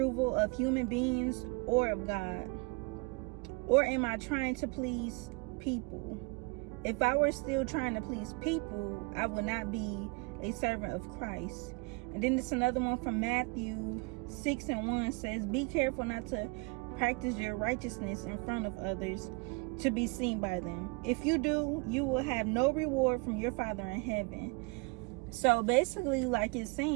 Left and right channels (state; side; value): quieter; left; 27.8 dB